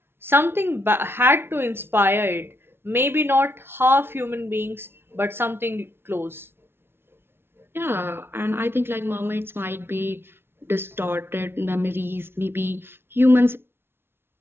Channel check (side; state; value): left; late; 0.11 ms